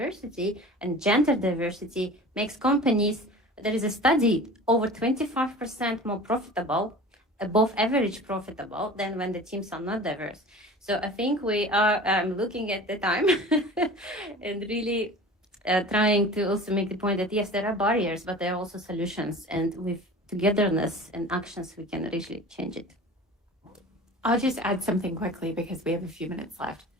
and gender diversity makes companies, there is a study, over 25% more profitable, above average profitable than when the teams are not diverse. So I think we are looking at the time and really trying to also make the point that yes, there are barriers, but there are also solutions, and with togetherness and actions, we can really change it. I'll just add something quickly because we have a few minutes left.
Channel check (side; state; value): both; normal; correlation 0.39